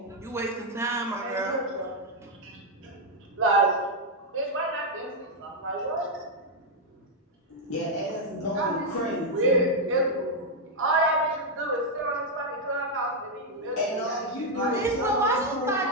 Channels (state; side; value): normal; both; correlation 0.00